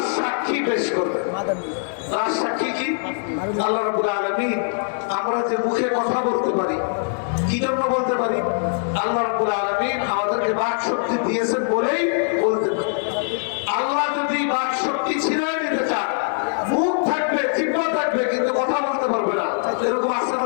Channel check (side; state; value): right; silent; digital silence